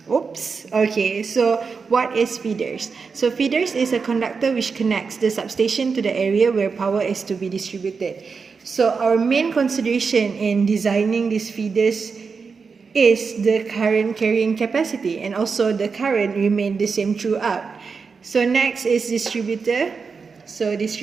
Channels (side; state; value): left; quieter; 5.2 dB